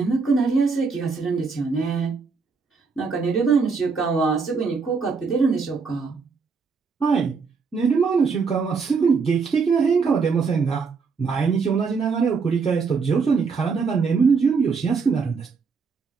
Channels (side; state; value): left; quieter; 5.1 dB